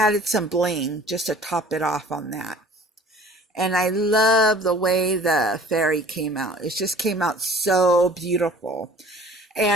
some bling just to top it off on that. And I love the way the fairy came out. It just came out so beautiful.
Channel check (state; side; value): normal; both; correlation 0.49